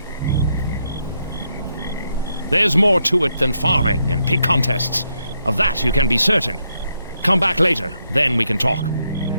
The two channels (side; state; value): both; inverted; correlation -0.79